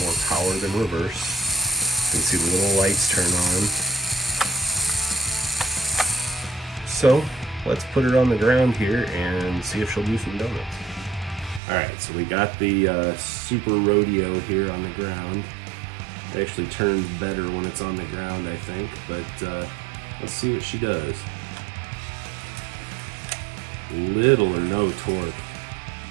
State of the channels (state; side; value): drops out; left; at 11.6 s